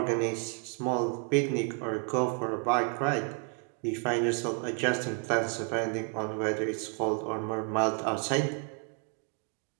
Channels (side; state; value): left; quieter; 39.8 dB